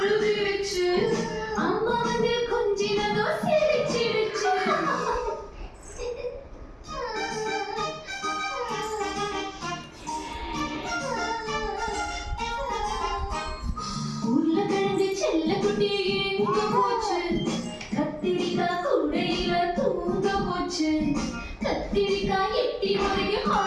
அம்மா வந்து கொஞ்சினதோ சிரிச்சிடுச்சு உருளைக்கிழங்கு செல்லக்குட்டி எங்க போச்சு கத்திரிக்காய் கூடையில தூங்க போச்சு கத்திரிக்காய் எட்டி போய்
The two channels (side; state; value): both; identical; correlation 1.00